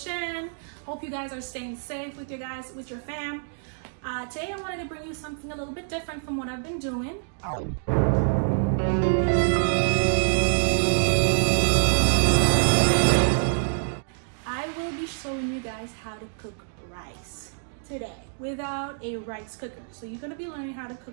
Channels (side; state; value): left; silent; digital silence